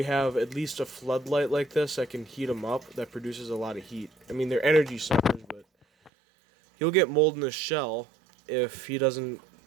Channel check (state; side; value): drops out; left; at 6.1 s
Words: have at least a floodlight like this that can heat him up, that produces a lot of heat. I mean, they're energy suckers, but he'll get mold in his shell if he doesn't